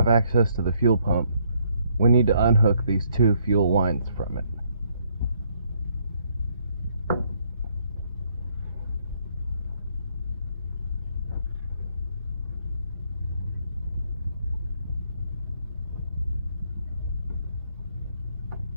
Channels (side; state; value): both; inverted; correlation -0.69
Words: access to the fuel pump, we need to unhook these two fuel lines from it.